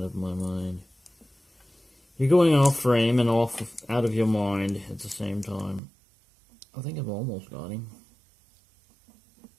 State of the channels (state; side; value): drops out; left; at 5.8 s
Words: of my mind. You're going off frame and out of your mind at the same time. I think I've almost got him.